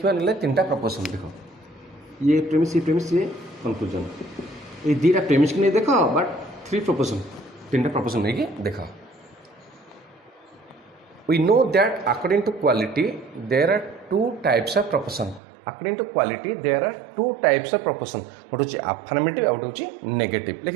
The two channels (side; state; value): left; drops out; at 15.4 s